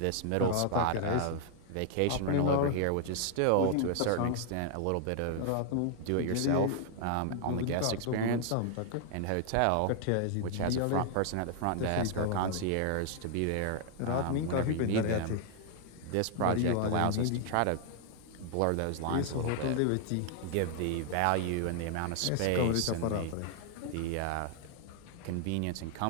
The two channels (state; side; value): different; both; correlation 0.00